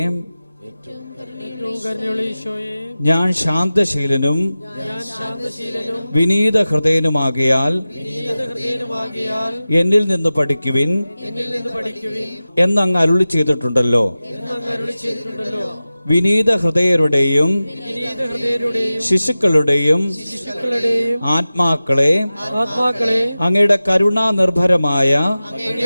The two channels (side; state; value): both; inverted; correlation -0.95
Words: ഞാൻ ശാന്തശീലനും വിനീത ഹൃദയനുമാകയാൽ എന്നിൽ നിന്ന് പഠിക്കുവിൻ എന്നങ്ങ് അരുളി ചെയ്തിട്ടുണ്ടല്ലോ. വിനീത ഹൃദയരുടെയും ശിശുക്കളുടെയും ആത്മാക്കളെ അങ്ങയുടെ കരുണാനിർഭരമായ